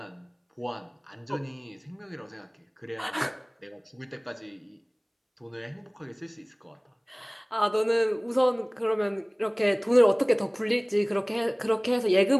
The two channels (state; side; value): identical; both; correlation 1.00